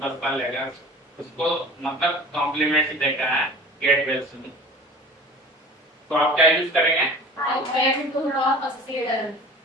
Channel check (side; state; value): both; normal; correlation 0.41